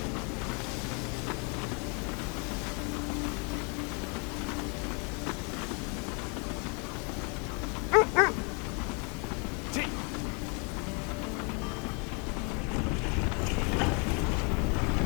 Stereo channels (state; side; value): quieter; right; 34.7 dB